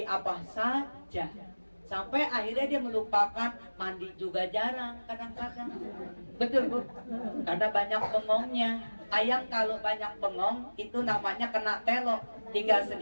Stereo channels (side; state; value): both; inverted; correlation -1.00